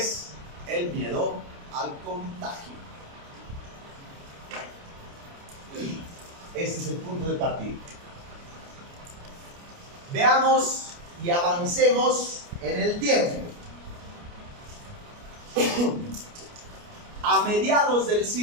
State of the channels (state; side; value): late; left; 29 ms